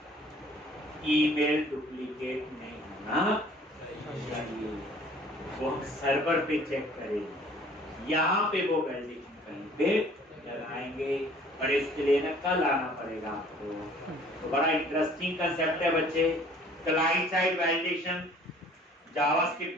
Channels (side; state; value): both; normal; correlation 0.53